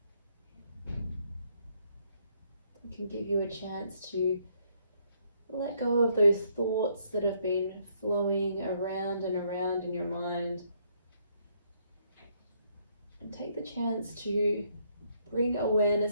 Can give you a chance to let go of those thoughts that have been flowing around and around in your mind, and take the chance to bring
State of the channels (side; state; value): both; inverted; correlation -0.70